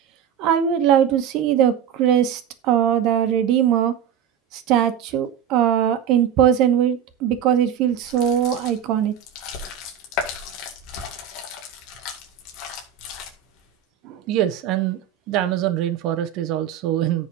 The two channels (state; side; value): quieter; left; 9.0 dB